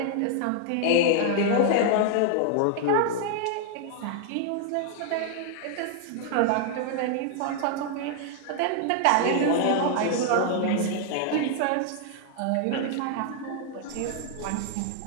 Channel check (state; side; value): different; both; correlation 0.00